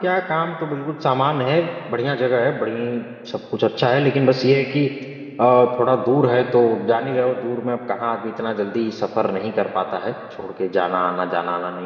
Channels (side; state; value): both; identical; correlation 1.00